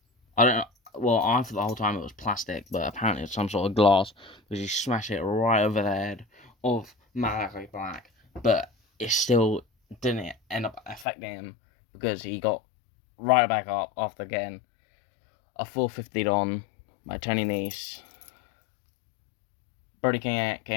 I thought the whole time it was plastic, but apparently it's some sort of glass, because he smashed it right over the head of Malachi Black, but it still didn't end up affecting him, because he got right back up after getting a 450'd on by Tony Nese. Brody King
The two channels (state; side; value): drops out; right; at 11.1 s